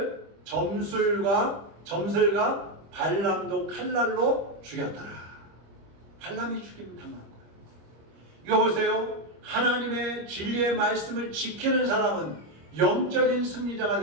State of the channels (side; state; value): left; late; 25 ms